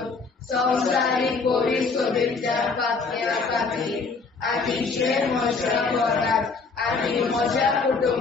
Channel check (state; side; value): quieter; right; 4.4 dB